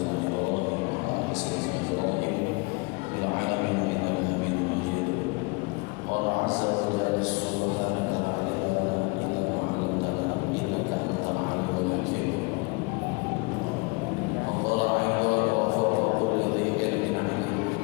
Ibrahim wa ala ali sayyidina Ibrahim fil 'alamin innaka Hamidum Majid. Allah azza wa jalla subhanaka la ilaha illa anta innaka antal alimul hakim. Allah inda wa fawqa kulli dhi ilmin alim.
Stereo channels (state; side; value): quieter; right; 28.9 dB